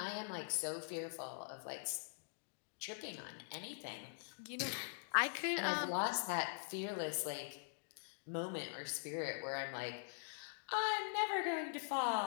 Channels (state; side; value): silent; right; digital silence